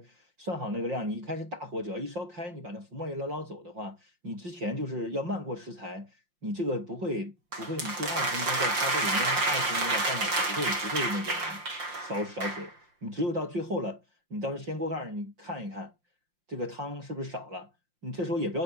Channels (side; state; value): left; late; 5.7 ms